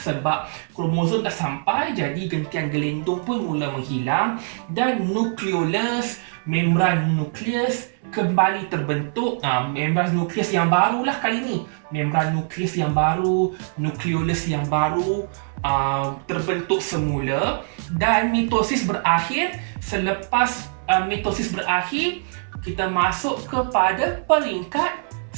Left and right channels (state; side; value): silent; left; 63 dB below the other